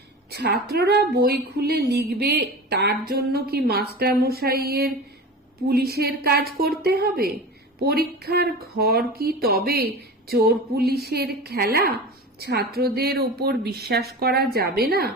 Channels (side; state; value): both; normal; correlation 0.32